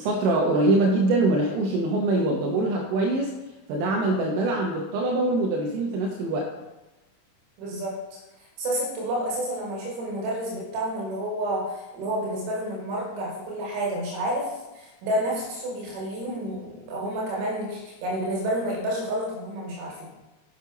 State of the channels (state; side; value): late; left; 26 ms